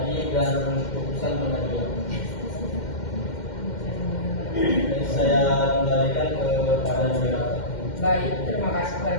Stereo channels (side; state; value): right; late; 2.1 ms